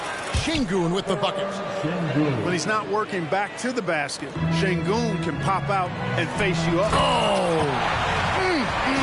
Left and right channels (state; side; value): identical; both; correlation 1.00